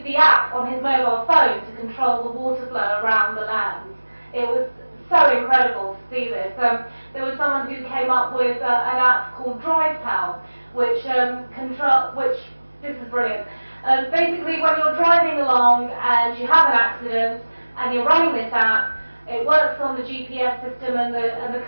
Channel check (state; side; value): inverted; both; correlation -1.00